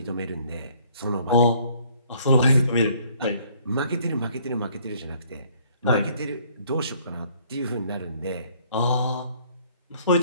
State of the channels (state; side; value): inverted; both; correlation -0.61